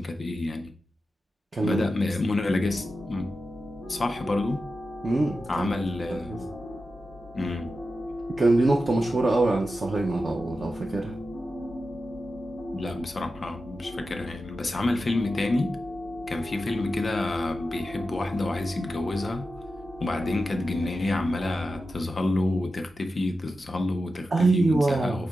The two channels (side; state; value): both; normal; correlation 0.91